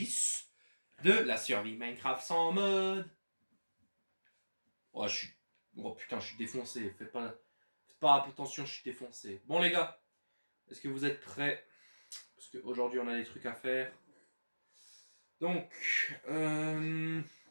de la survie Minecraft sans mode. Oh, oh putain, je suis défoncé. Faites pas attention, je suis défoncé. Bon les gars, est-ce que vous êtes prêts? Parce qu'aujourd'hui on a des trucs à faire. Donc,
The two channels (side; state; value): both; inverted; correlation -1.00